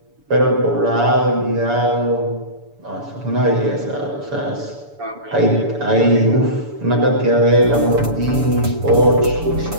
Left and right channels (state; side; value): late; left; 7.0 ms